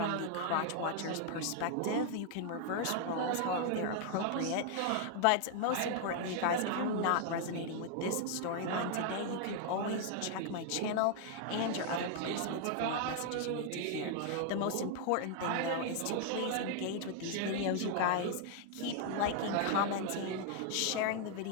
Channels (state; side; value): different; both; correlation 0.00